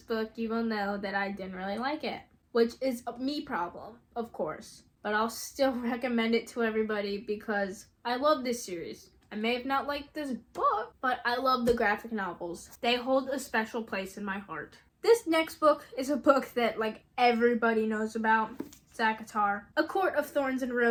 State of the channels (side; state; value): both; identical; correlation 1.00